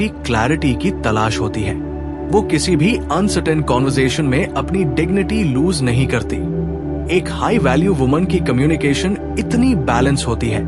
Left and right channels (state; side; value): identical; both; correlation 1.00